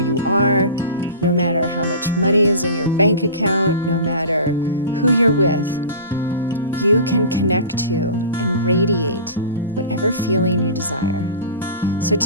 are, no matter how much money is in your bank account, no matter who you're with, you can connect to and radiate whatever feeling you desire. So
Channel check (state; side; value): inverted; both; correlation -0.36